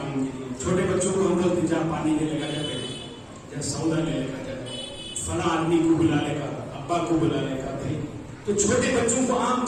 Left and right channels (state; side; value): identical; both; correlation 1.00